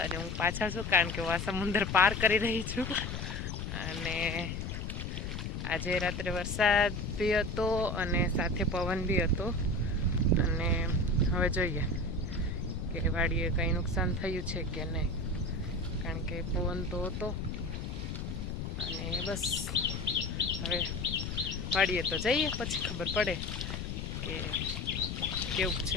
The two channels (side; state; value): left; noise; rumble, 4 dB below the sound